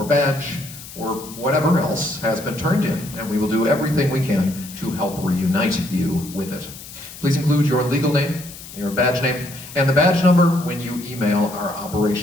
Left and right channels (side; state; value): left; noise; hiss, 15 dB below the sound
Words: badge or whatever else has been turned in, and we will do everything we can to help reunite you with it. Please include your legal name, your badge name, and the badge number when you email our